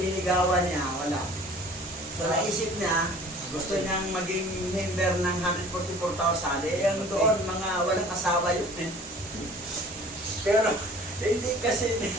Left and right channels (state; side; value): normal; both; correlation 0.47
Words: niligawan niya, wala. So naisip niya, gusto niyang maging member ng 144,000, yung doon, mga walang asawa yun eh. Pero hindi kasi